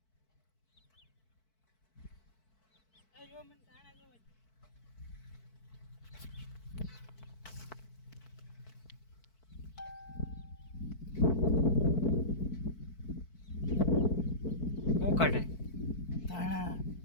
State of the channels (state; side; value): late; right; 4.6 ms